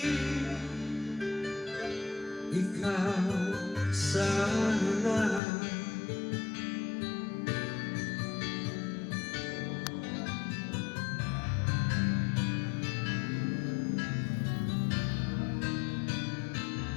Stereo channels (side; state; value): right; drops out; at 5.4 s